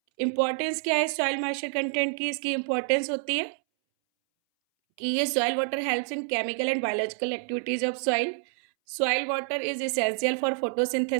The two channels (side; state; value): left; silent; 60 dB below the other